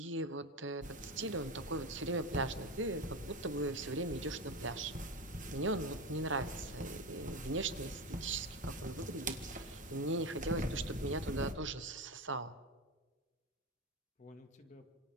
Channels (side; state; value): both; normal; correlation 0.20